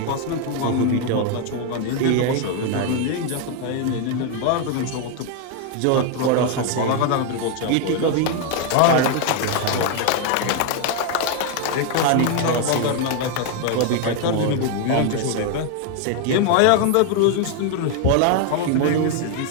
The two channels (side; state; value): both; different; correlation 0.01